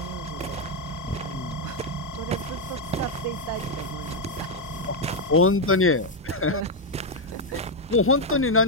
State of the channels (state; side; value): normal; both; correlation 0.02